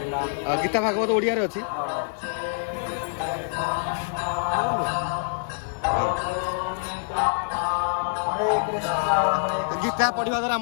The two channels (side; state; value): right; silent; digital silence